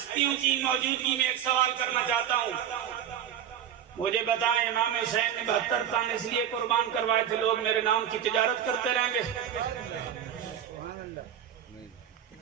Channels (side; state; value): left; quieter; 9.6 dB